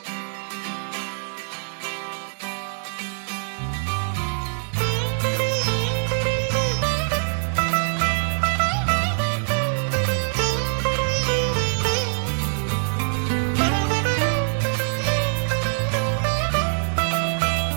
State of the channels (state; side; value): silent; left; 63 dB below the other